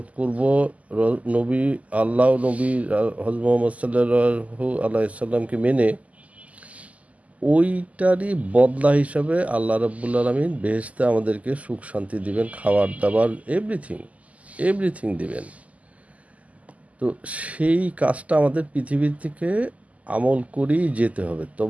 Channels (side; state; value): left; late; 0.072 ms